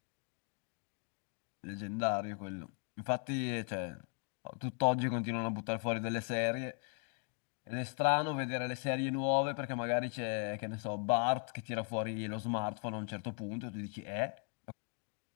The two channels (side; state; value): right; quieter; 39.8 dB